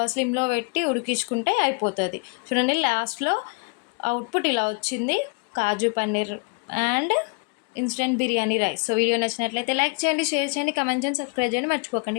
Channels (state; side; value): quieter; right; 32.6 dB